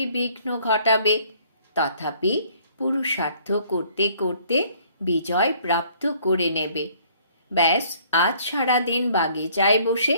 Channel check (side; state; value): both; inverted; correlation -0.59